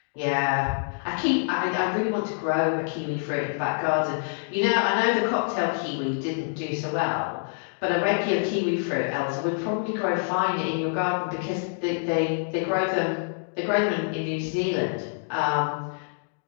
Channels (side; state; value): right; silent; digital silence